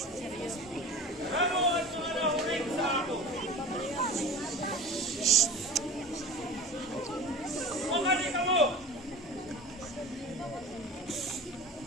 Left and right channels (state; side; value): normal; both; correlation 0.36